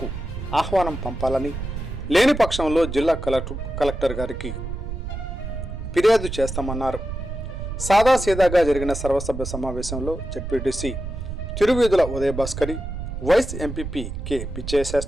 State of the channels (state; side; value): noise; right; rumble, 7 dB below the sound